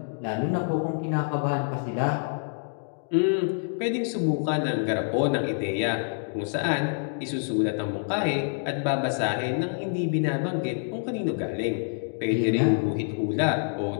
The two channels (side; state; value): right; silent; digital silence